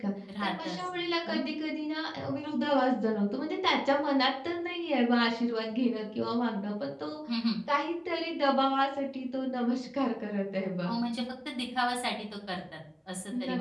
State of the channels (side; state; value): both; identical; correlation 1.00